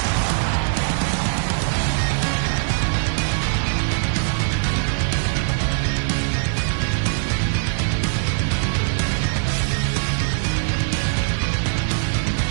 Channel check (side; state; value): left; silent; 65 dB below the other